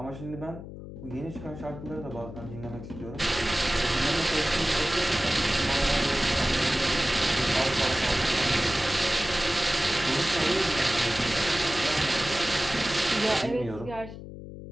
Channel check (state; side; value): noise; left; hum, 12 dB below the sound